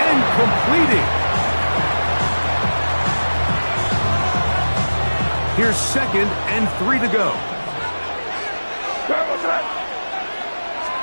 and completing. Here's second and 3 to go.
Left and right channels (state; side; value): inverted; both; correlation -1.00